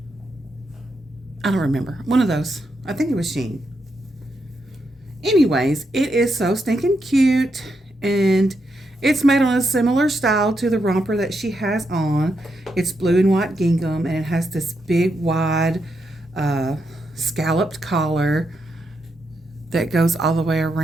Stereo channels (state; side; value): normal; both; correlation 0.82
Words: I don't remember. One of those. I think it was Shein. Anyways, it is so stinking cute. And it's made on a similar style to the romper that she has on. It's blue and white gingham. And it has this big, wide, scalloped collar that goes all the way